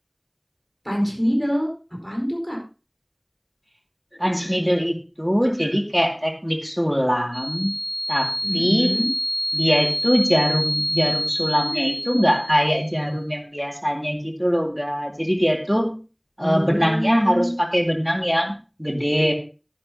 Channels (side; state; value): both; identical; correlation 1.00